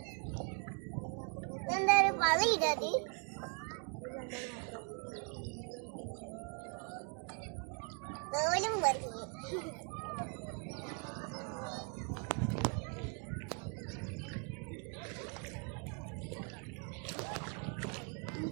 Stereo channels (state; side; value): quieter; left; 38.3 dB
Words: എന്താ ഒരു പളിയിടത്? തോലും പറഞ്ഞു.